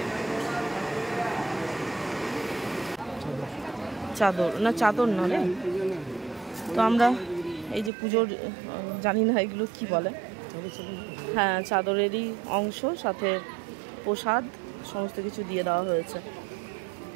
চাদর না, চাদর না রে। তো আমরা এই যে পুজোর, জানি না এগুলো কি বলে, হ্যাঁ চাদরেরই অংশ, সাথে প্রসাদ সমস্ত কিছু দিয়ে দেওয়া হয়েছে।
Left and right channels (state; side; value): drops out; left; at 7.9 s